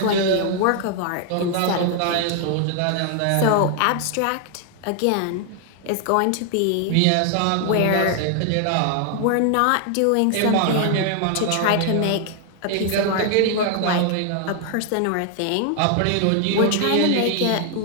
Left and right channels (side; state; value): both; different; correlation 0.00